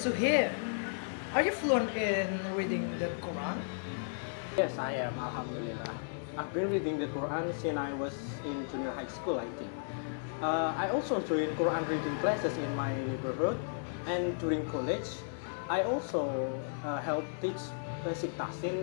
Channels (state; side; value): silent; right; 55 dB below the other